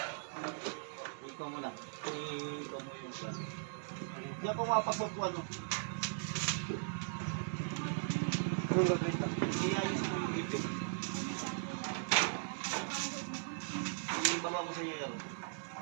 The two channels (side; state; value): left; silent; digital silence